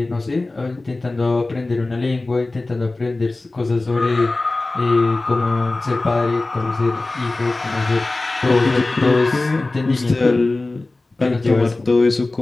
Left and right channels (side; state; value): right; quieter; 3.1 dB